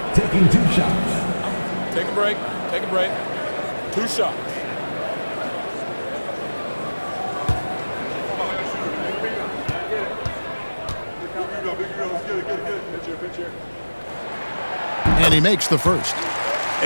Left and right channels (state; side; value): inverted; both; correlation -1.00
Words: taking 2 shots. Take a break. 2 shots. And he makes the first.